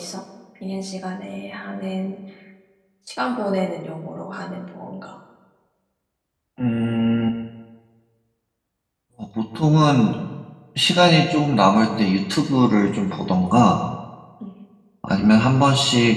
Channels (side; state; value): both; identical; correlation 1.00